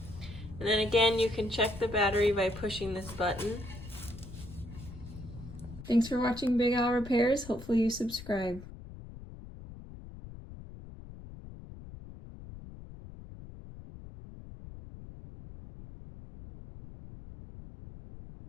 And then again, you can check the battery by pushing this button. Thanks for watching Big Al Repairs. Hopefully you subscribe.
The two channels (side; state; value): left; noise; rumble, 14 dB below the sound